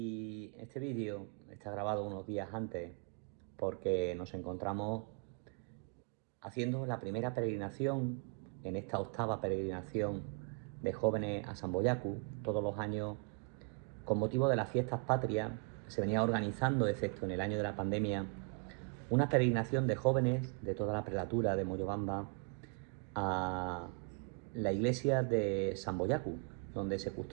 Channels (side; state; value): left; quieter; 35.7 dB